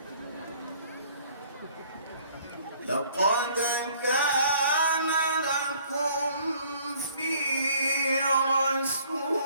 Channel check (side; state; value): both; inverted; correlation -0.58